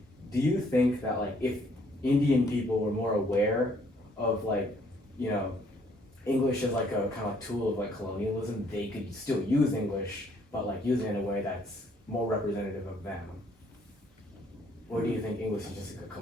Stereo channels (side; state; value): both; normal; correlation 0.65